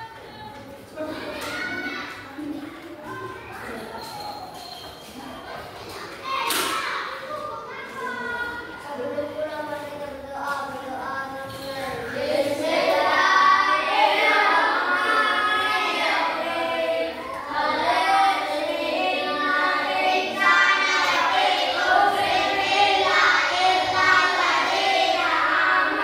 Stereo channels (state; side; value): identical; both; correlation 1.00